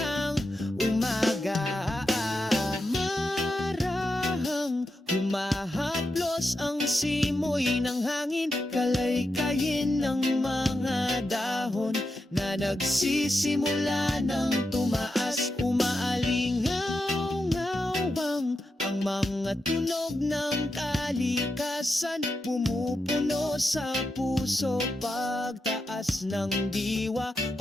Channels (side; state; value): both; normal; correlation 0.87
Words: umaga. Humahaplos ang simoy ng hangin, kalaykayin ng mga dahon na nagsisimula ng tumaas. Umaalingaw-ngawang ang mga tunog ng kalikasan, pumupuno sa puso pagtaas ng diwa.